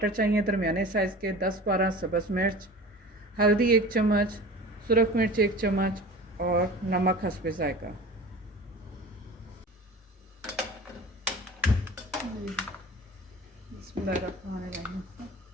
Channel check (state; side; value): normal; both; correlation 0.38